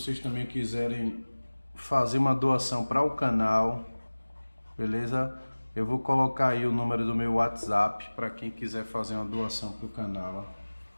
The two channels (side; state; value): both; inverted; correlation -1.00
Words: também quiserem fazer uma doação para o canal, beleza? Eu vou colocar aí o número do meu WhatsApp para quem quiser fazer uma doação para o canal.